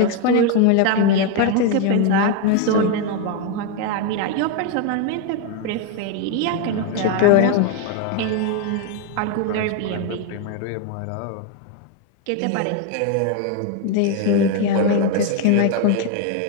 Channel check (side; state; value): both; different; correlation 0.01